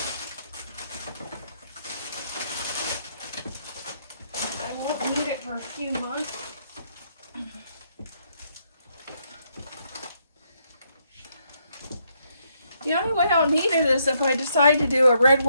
won't need it for a few months. The only way I'll need it is if I decide to do a red,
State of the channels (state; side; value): inverted; both; correlation -0.75